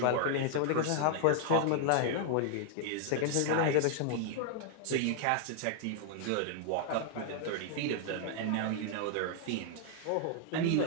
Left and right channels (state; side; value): different; both; correlation 0.00